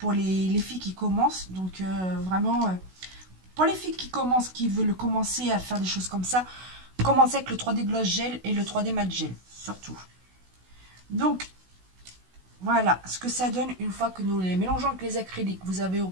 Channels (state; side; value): late; left; 16 ms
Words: les filles qui commencent. Donc vraiment, pour les filles qui commencent, qui veulent commencer à faire des choses comme ça, commencez avec le 3D Gloss Gel et le 3D Matte Gel, surtout. Donc, voilà ce que ça donne une fois que nous les mélangeons avec les acryliques. Vous avez